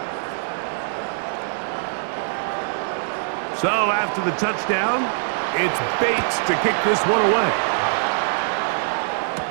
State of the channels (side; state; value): left; silent; 64 dB below the other